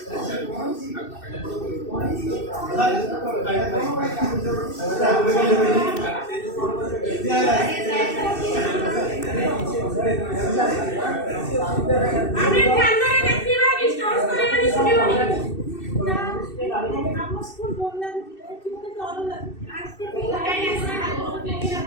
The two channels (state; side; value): late; right; 2.6 ms